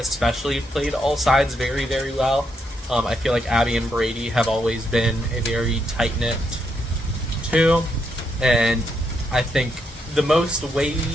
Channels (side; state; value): both; normal; correlation 0.79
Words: played all sides very, very well. I feel like Abby and Brady have always been a very tight-knit two. And I think the most